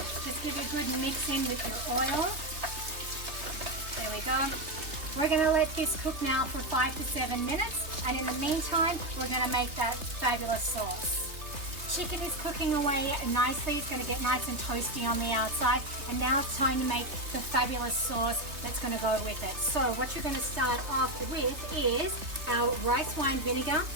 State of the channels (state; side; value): late; left; 3.3 ms